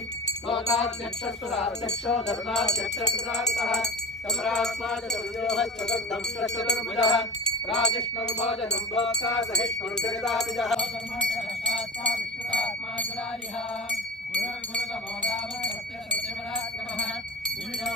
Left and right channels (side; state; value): both; normal; correlation 0.32